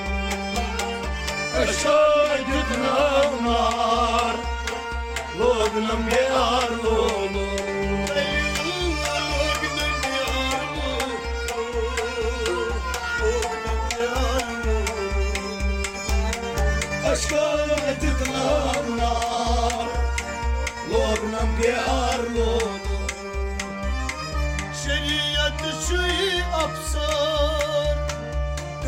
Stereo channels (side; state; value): both; identical; correlation 1.00